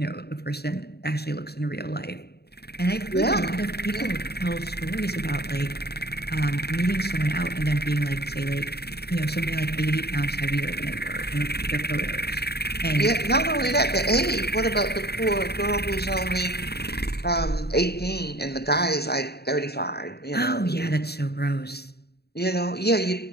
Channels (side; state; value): right; late; 0.47 ms